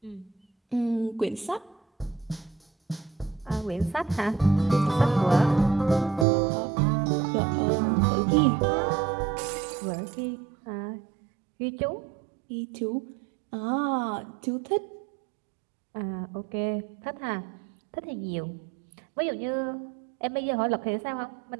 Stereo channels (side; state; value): left; drops out; at 6.2 s